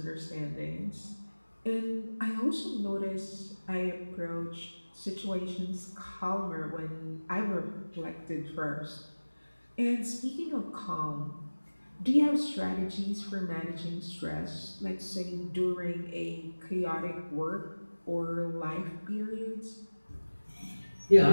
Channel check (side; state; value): both; inverted; correlation -1.00